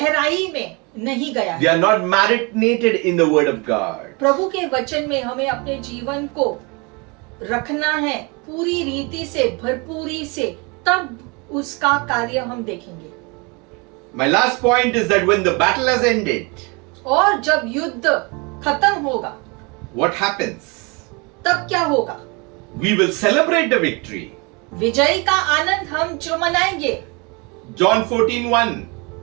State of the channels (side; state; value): left; quieter; 29.4 dB